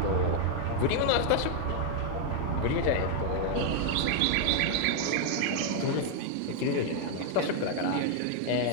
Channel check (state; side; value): different; both; correlation 0.00